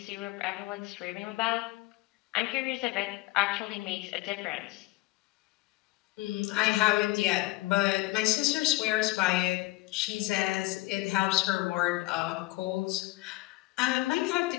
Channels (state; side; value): quieter; right; 21.1 dB